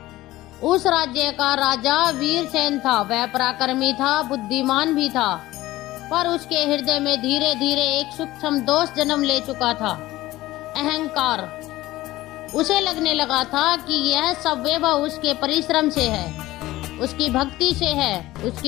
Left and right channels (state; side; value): quieter; right; 17.1 dB